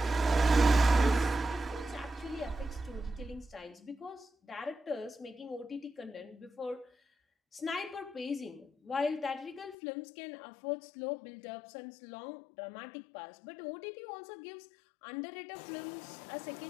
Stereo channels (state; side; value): drops out; right; at 9.8 s